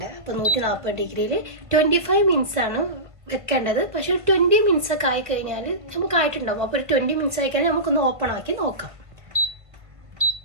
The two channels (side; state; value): left; late; 1.5 ms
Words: അപ്പോൾ 140 ഡിഗ്രിയിൽ 25 മിനിറ്റ്സ് ആണ് വെക്കേണ്ടത്. പക്ഷേ 20 മിനിറ്റ്സ് ഒക്കെ ആയിക്കഴിഞ്ഞാൽ നമുക്ക് ആയിട്ടുണ്ടാവും. അപ്പോൾ ഒരു 20 മിനിറ്റ്സ് ആയിക്കഴിഞ്ഞാൽ നമുക്കൊന്ന് ഓപ്പൺ ആക്കി നോക്കാം.